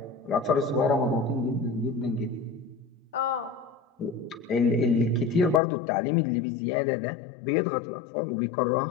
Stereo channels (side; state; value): right; drops out; at 5.6 s